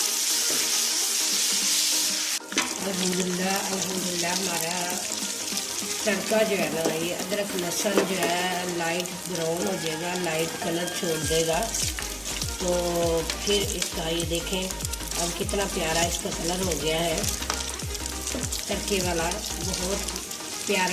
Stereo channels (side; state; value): both; identical; correlation 1.00